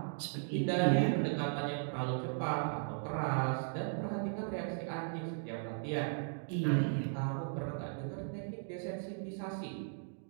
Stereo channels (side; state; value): left; silent; digital silence